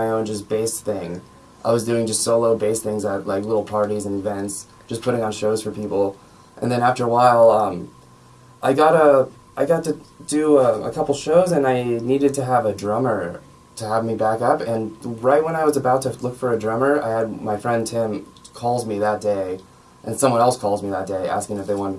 own just bass thing. I was doing just solo bass things at like little parties and events, just putting on shows for people. And then after a while, I got to do a couple shows, and I needed to have a drummer to have me back up. And right when I was about to look for a drummer, I had my friend Tim calls me that day, and someone else calls me that day asking if they wanted to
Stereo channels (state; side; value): identical; both; correlation 1.00